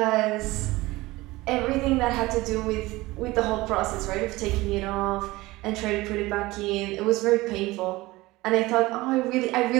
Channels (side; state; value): left; quieter; 19.9 dB